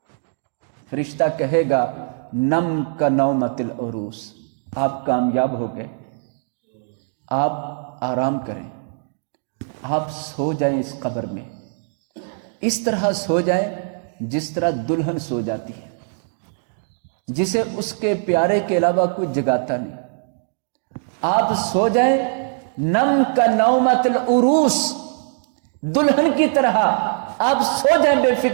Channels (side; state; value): left; silent; digital silence